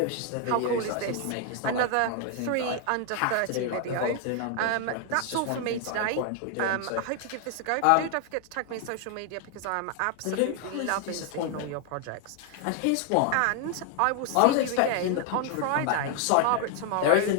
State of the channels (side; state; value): both; different; correlation 0.00